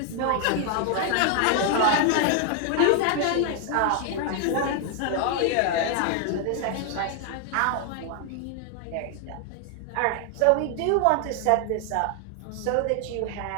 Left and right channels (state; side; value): different; both; correlation 0.00